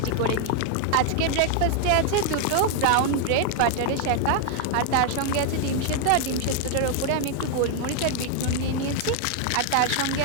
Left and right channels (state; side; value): different; both; correlation 0.00